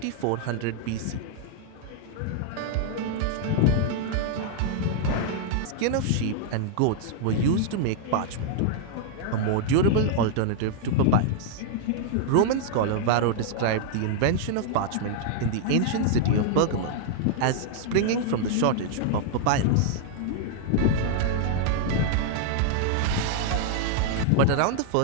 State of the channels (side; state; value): both; different; correlation -0.01